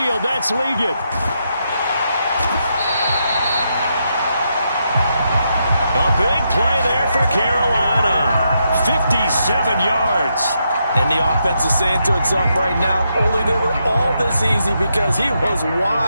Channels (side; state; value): both; inverted; correlation -0.81